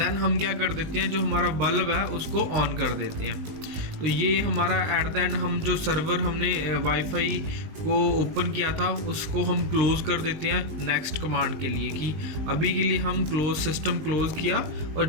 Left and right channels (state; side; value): late; left; 19 ms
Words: हम क्या कर देते हैं, जो हमारा बल्ब है उसको ऑन कर देते हैं। तो ये हमारा एट द एंड हम जो सर्वर हमने वाईफाई को ओपन किया था उसको हम क्लोज कर देते हैं नेक्स्ट कमांड के लिए, कि अभी के लिए हम सिस्टम क्लोज किया और